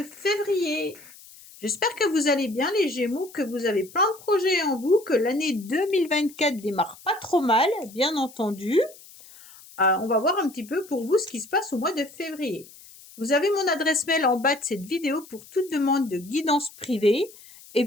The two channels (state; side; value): noise; left; hiss, 21 dB below the sound